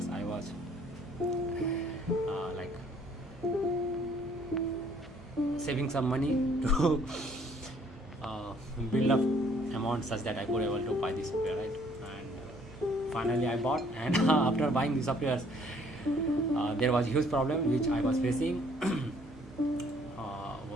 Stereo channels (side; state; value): both; normal; correlation 0.62